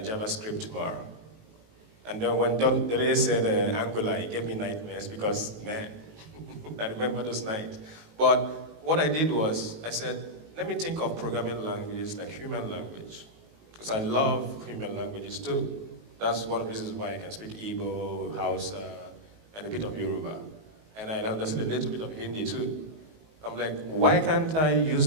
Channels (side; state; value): left; late; 19 ms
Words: tomorrow. And then when Dele said Angular, it gave me nightmares because, man, I remember those nights. But what I did was, I said, let me think of programming languages like human language. Because I love human languages too. That's one of the reasons why I can speak Igbo, Hausa, and a bit of Yoruba. And I understand a little bit of Hindi too. I'm like, why can't I use